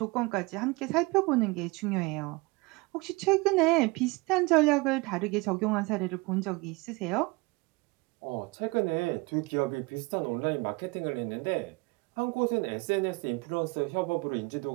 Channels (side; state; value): left; quieter; 25.3 dB